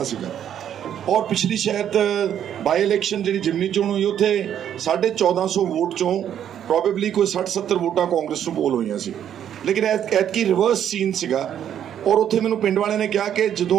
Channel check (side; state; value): left; quieter; 9.8 dB